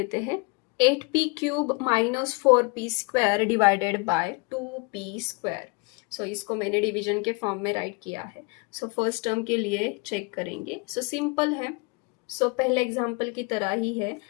हैं। 8p³ - 4p² divided by 2p²। सो इसको मैंने डिवीजन के फॉर्म में राइट किया है। सो फर्स्ट टर्म के लिए चेक करेंगे। सो सिंपल है, सो पहले एग्जाम्पल की तरह ही है।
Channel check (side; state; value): right; quieter; 30.8 dB